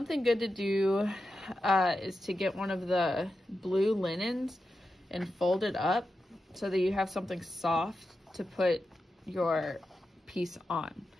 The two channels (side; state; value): both; normal; correlation 0.90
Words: good to do is to get one of the blue linens and fold it up so that you have something soft to put your piece on.